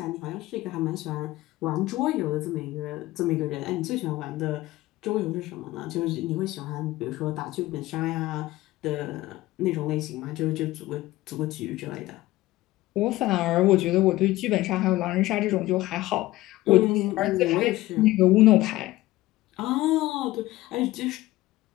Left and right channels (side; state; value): right; quieter; 17.5 dB